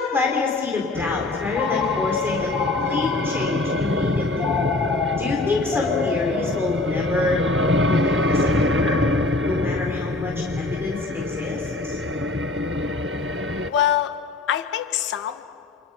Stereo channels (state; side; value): quieter; right; 3.1 dB